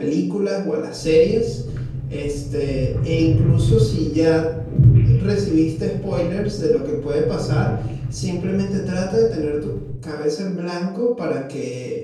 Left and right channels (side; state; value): both; identical; correlation 1.00